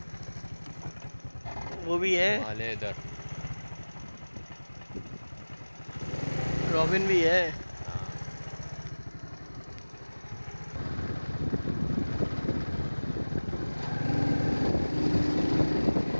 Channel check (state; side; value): inverted; both; correlation -1.00